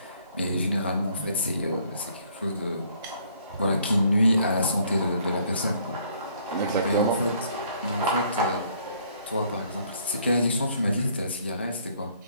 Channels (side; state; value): both; inverted; correlation -0.63